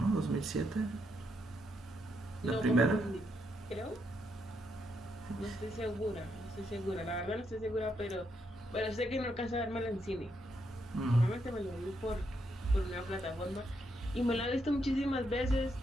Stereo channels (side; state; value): both; normal; correlation 0.78